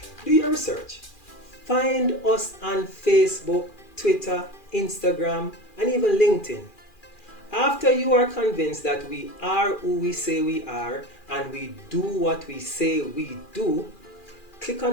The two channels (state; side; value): late; right; 2.4 ms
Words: Do your research. Find us on Facebook, Twitter, Instagram, and even LinkedIn. After you are convinced that we are who we say we are and we do what we say we do, click